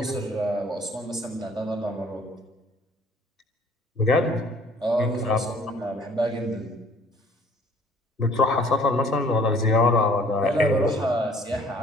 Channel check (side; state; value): both; normal; correlation 0.56